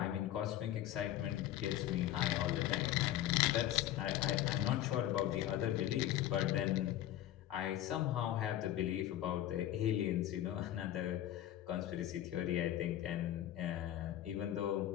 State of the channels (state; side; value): quieter; right; 12.9 dB